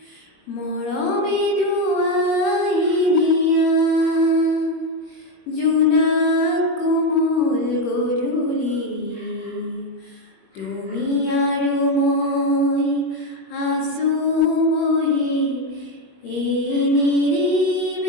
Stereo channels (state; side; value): late; right; 21 ms